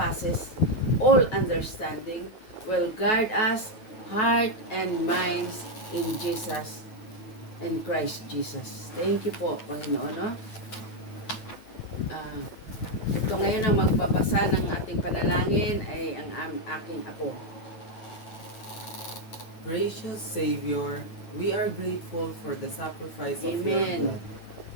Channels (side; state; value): right; late; 9.3 ms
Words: all understanding will guard us heart and minds in Jesus and Christ Jesus. Thank you po, Panginoon. No? Ito ngayon ang magbabasa ng ating panalangin ay ang aking apo. Gracious Savior, we are grateful for the sacrifice of your Amen. blood,